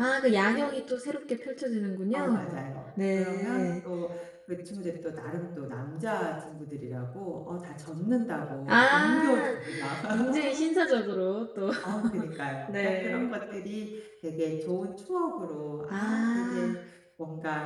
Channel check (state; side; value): identical; both; correlation 1.00